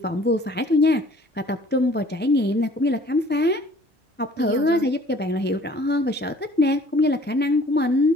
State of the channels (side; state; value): both; normal; correlation 0.53